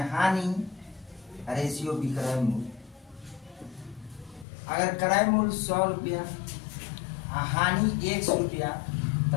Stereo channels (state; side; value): drops out; right; at 4.5 s